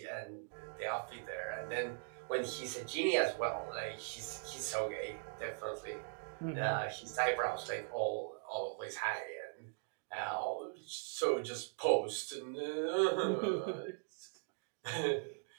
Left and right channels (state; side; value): silent; left; digital silence